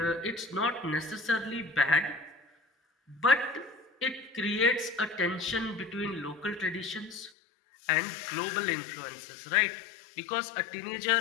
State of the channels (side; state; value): right; drops out; at 7.3 s